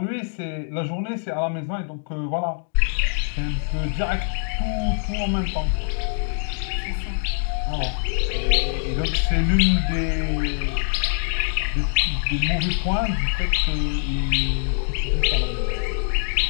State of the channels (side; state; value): right; silent; digital silence